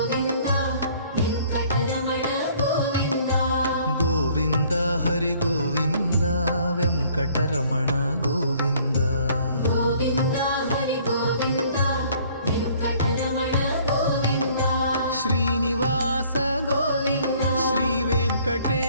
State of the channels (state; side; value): inverted; both; correlation -0.58